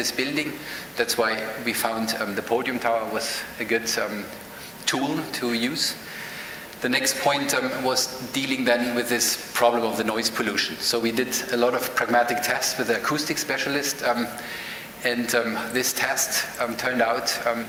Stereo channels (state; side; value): identical; both; correlation 1.00